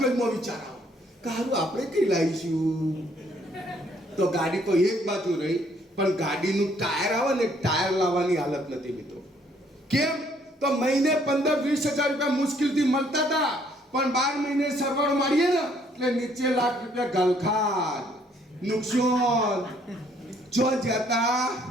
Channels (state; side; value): normal; both; correlation 0.65